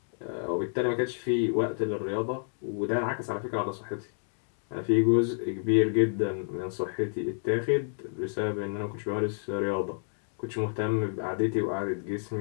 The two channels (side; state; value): right; silent; digital silence